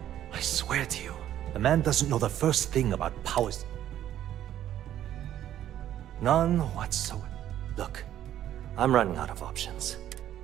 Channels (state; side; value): quieter; left; 11.7 dB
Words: I swear to you, the man doesn't know the first thing about powers. None whatsoever. Look, I'm running out of options.